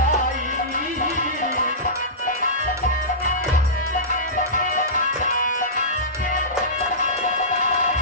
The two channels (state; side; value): normal; both; correlation -0.18